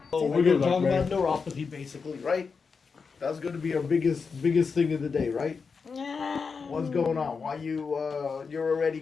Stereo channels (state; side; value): quieter; right; 5.2 dB